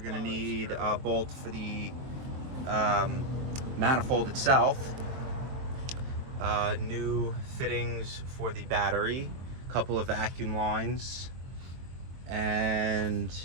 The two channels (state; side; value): late; left; 23 ms